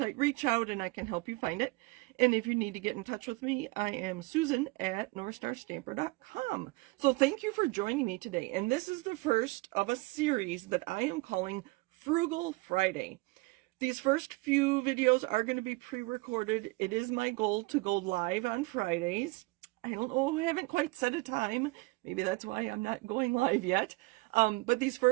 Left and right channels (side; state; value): left; quieter; 24.4 dB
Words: reach out and I can help you find it. And if you need to get in touch with me, I am Susan at northstarstamper.com. So thank you for joining me today. And this is the first of a series that I am calling Frugal Friday. These first few videos are going to be pre-recorded. It is my goal to go live on Fridays. I don't know, I haven't quite set a time. Maybe that's why I'm not going live yet. But these